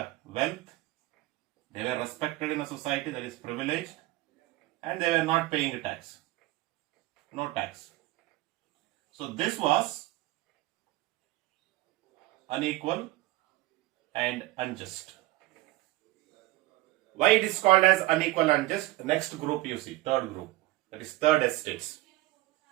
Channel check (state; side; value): quieter; left; 18.5 dB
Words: wealth, they were respected in a society, that is privileged, and they were not paying a tax. No tax. So this was unequal and unjust. Why it is called as unequal and unjust? Next group you see, third group, that is third estates.